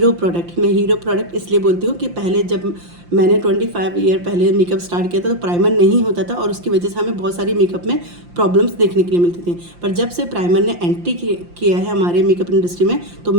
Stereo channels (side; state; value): left; late; 5.7 ms